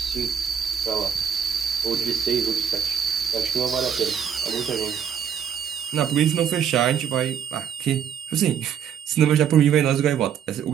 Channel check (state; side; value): quieter; left; 8.2 dB